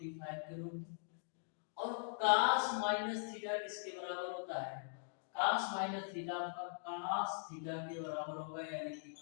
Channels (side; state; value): right; silent; digital silence